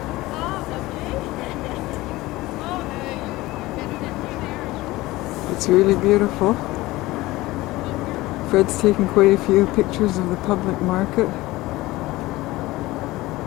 It's really beautiful. Fred's taken quite a few pictures of the public market.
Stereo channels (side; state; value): right; quieter; 19.0 dB